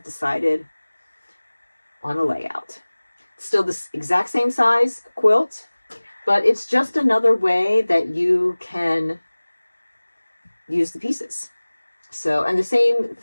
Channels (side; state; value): both; inverted; correlation -1.00